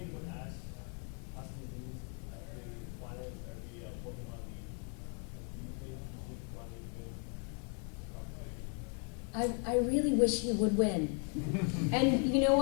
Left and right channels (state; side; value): quieter; right; 39.8 dB